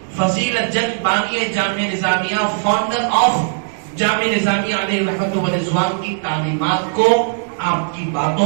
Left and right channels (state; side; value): silent; left; digital silence